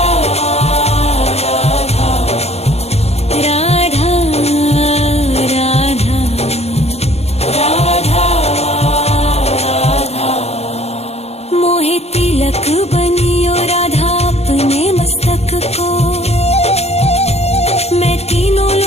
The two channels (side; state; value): right; late; 0.31 ms